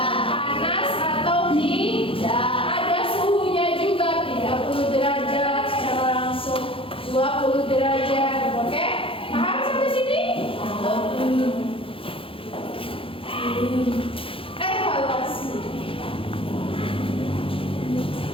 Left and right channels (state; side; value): late; right; 0.26 ms